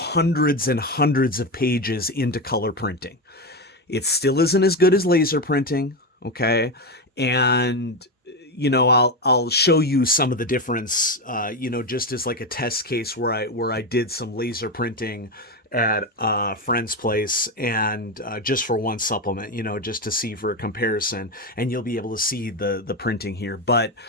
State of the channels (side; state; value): both; normal; correlation 0.14